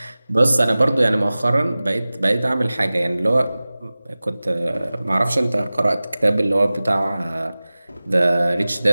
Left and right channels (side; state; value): both; inverted; correlation -0.98